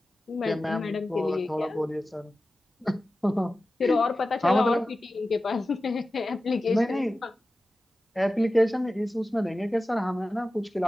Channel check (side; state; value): both; normal; correlation 0.95